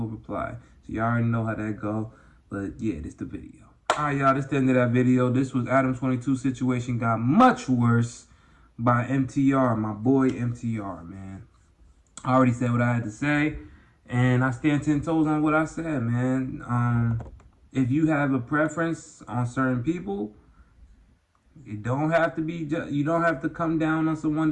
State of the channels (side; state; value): both; identical; correlation 1.00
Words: reply. So y'all already know how that go. But yeah, this is the video. Alright, y'all, this is the end of that video. This was Adam22 Situation Got Much Worse by MTR, my boy MTR, man. I already said what I had to say, and I stand 10 toes on what I said, man. If you have a preference on certain people, you don't have to come down on someone